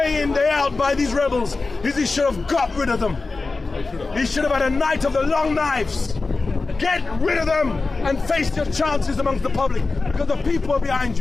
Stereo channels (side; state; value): right; quieter; 3.8 dB